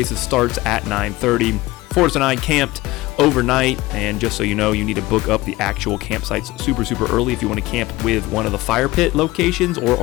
starts at 9:30. Forrest and I camped overnight, and just so you know, you need to book up the actual campsites super early if you want to camp with one of the fire pit locations or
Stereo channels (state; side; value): quieter; right; 19.1 dB